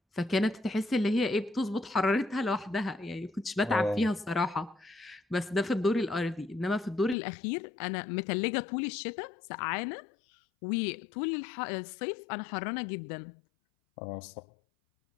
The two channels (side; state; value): right; drops out; at 7.2 s